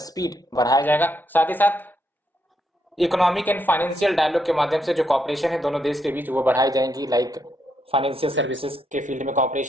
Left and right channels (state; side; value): normal; both; correlation 0.78